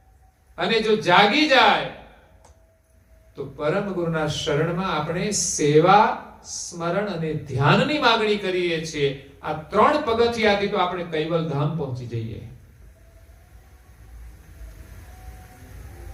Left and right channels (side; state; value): both; identical; correlation 1.00